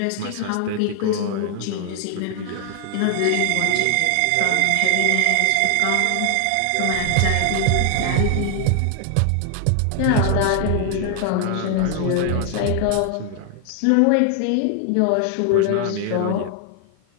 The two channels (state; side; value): different; both; correlation 0.00